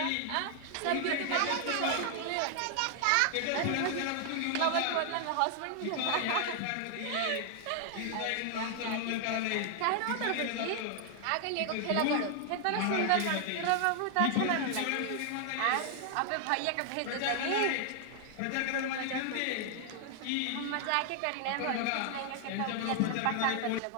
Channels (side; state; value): both; different; correlation 0.00